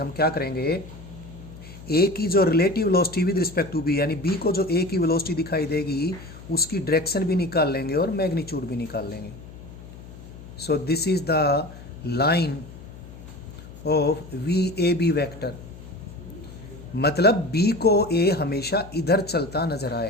क्या करेंगे, ए की जो relative velocity with respect to B, यानी बी को जो ए की वेलोसिटी दिखाई देगी उसकी डायरेक्शन भी निकाल लेंगे और मैग्नीट्यूड भी निकाल लेंगे। So this is the line of v A B vector, मतलब बी को ए हमेशा इधर चलता नजर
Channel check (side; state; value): left; noise; hum, 16 dB below the sound